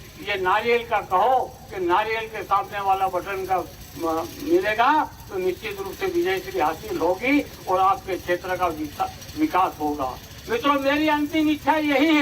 ये नारियल का कहो कि नारियल के सामने वाला बटन का मिलेगा तो निश्चित रूप से विजय श्री हासिल होगी और आपके क्षेत्र का विकास होगा। मित्रों, मेरी अंतिम इच्छा यही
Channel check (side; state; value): both; identical; correlation 1.00